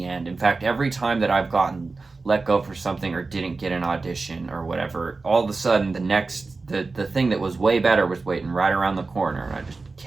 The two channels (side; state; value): left; quieter; 3.9 dB